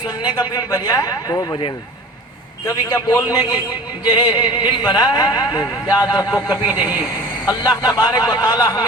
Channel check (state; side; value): normal; both; correlation 0.41